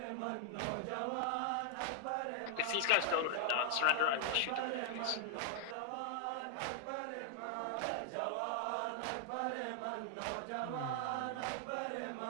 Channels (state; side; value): different; both; correlation 0.00